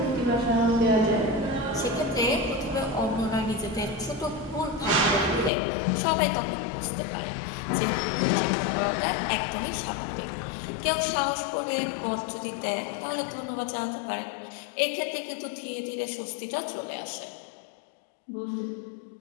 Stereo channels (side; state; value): right; drops out; at 5.5 s